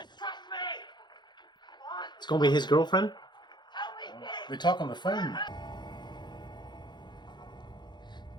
trust me! It's gonna be his girlfriend? They talk on the phone.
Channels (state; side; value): late; right; 0.21 ms